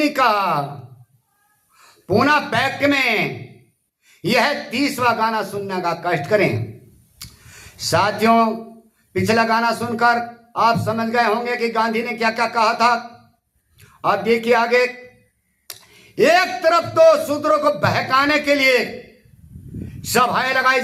का पूना पैक्ट में यह 30वां गाना सुनने का कष्ट करें। साथियों, पिछला गाना सुनकर आप समझ गए होंगे कि गांधी ने क्या क्या कहा था। अब देखिए आगे। एक तरफ तो शूद्रों को बहकाने के लिए सभाएं लगाई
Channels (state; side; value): identical; both; correlation 1.00